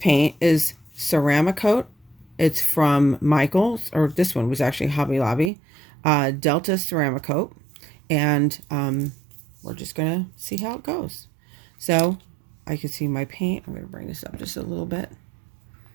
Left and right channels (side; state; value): left; drops out; at 5.5 s